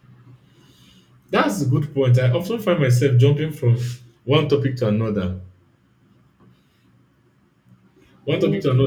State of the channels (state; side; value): identical; both; correlation 1.00